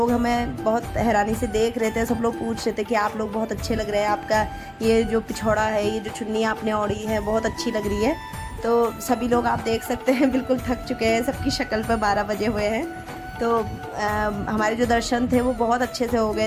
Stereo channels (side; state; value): both; identical; correlation 1.00